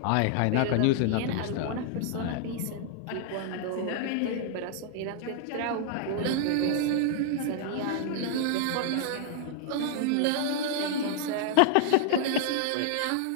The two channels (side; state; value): both; different; correlation 0.00